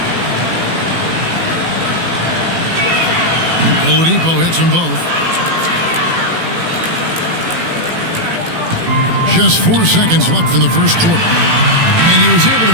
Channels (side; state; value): left; late; 18 ms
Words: Oladipo hits them both. Just 4 seconds left in the first quarter. And he was able to